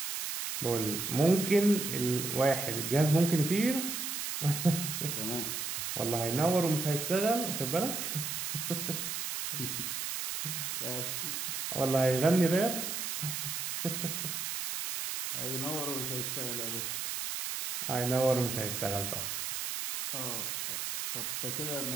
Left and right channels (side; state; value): right; noise; hiss, 3 dB below the sound